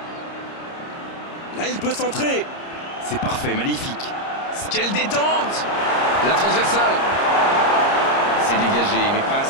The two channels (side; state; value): right; late; 30 ms